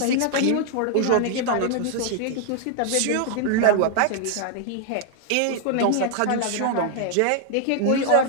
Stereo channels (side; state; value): both; different; correlation 0.00